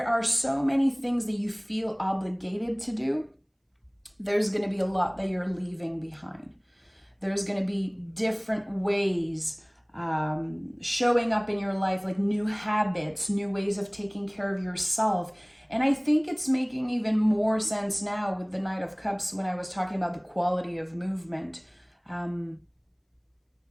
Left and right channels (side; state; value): both; identical; correlation 1.00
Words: are so many things that you feel obligated to do, there's going to be a lot that you're leaving behind. There's going to be different ways showing up in your life, like new habits, new ways of taking care of yourself. And I think it's making even more sense now with the Knight of Cups when I was talking about the quality of movement.